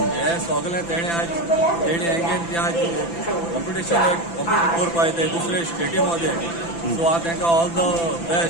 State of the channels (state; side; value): late; right; 5.9 ms